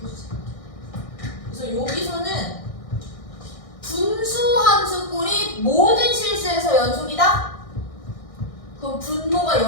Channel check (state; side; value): late; right; 1.6 ms